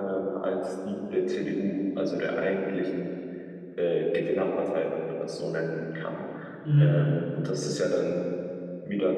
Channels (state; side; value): identical; both; correlation 1.00